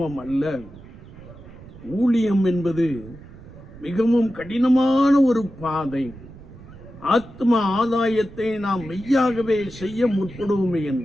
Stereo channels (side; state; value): right; noise; rumble, 19 dB below the sound